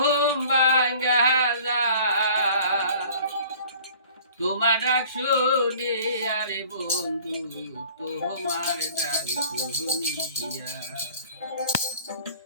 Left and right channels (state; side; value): inverted; both; correlation -0.48